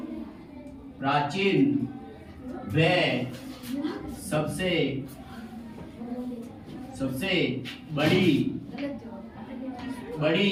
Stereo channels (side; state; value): both; identical; correlation 1.00